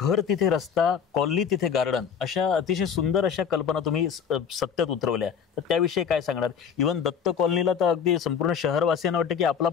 तिथे रस्ता, कॉलनी तिथे गार्डन, अशा अतिशय सुंदर अशा कल्पना तुम्ही सत्यात उतरवल्या. तर त्याविषयी काय सांगणार? इव्हन दत्त कॉलनीला तर अगदी संपूर्ण शहरवासियांना वाटतं की आपला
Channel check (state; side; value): quieter; right; 7.3 dB